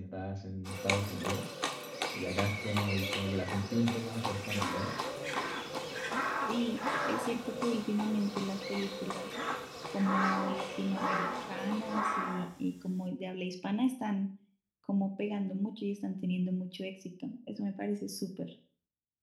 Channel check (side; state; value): both; identical; correlation 1.00